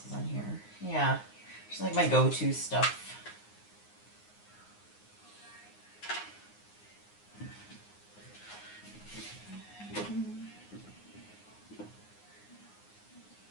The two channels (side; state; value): right; late; 9.6 ms